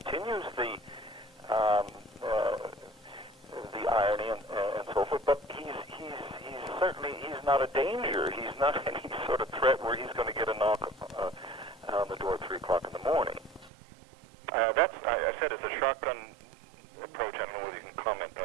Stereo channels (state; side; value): drops out; left; at 13.7 s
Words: the irony and so forth. But he's certainly not a danger. He's not any sort of threat where he's going to get a knock on the door at 3 o'clock in the morning. I said it's a shotgun approach. I don't know whether you can comment on